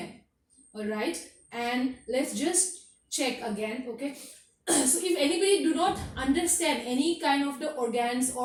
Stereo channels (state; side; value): identical; both; correlation 1.00